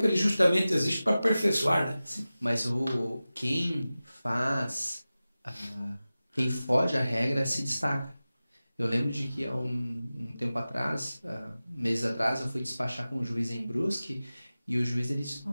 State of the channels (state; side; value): inverted; both; correlation -0.96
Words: ele justamente existe para aperfeiçoar, né? Mas quem foge à regra se destaca. Eu lembro de que há um tempo atrás, meses atrás, eu fui despachar com um juiz em Brusque e o juiz ele disse,